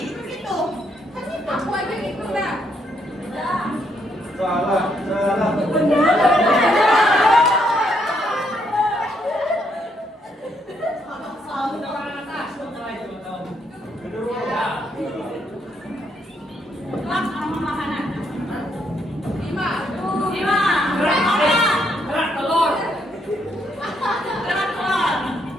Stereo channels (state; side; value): normal; both; correlation 0.74